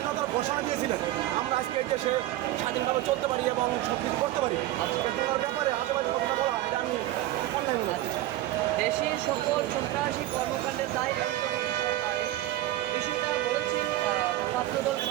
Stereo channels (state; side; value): quieter; left; 15.3 dB